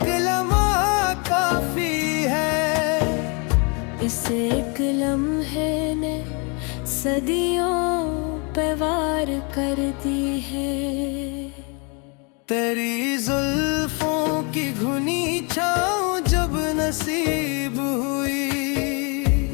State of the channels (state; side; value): quieter; right; 33.0 dB